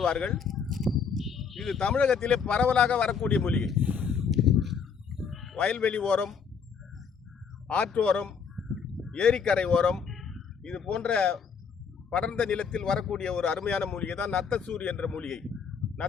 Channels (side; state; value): right; quieter; 6.2 dB